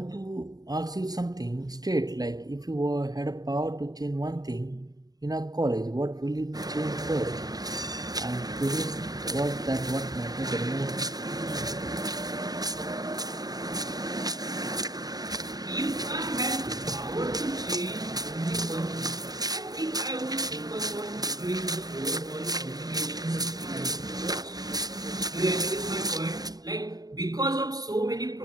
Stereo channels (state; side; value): late; left; 0.18 ms